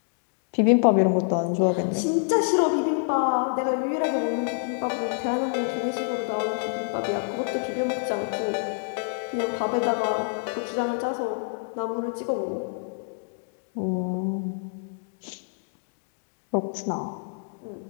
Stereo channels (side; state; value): right; silent; digital silence